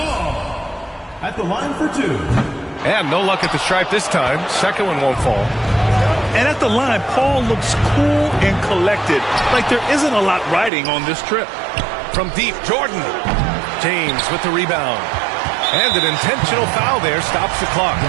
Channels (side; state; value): left; drops out; at 10.7 s